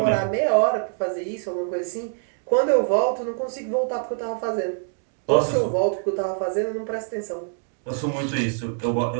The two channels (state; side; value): silent; left; 62 dB below the other